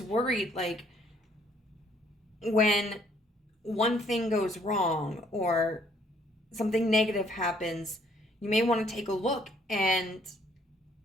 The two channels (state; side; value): normal; both; correlation 0.64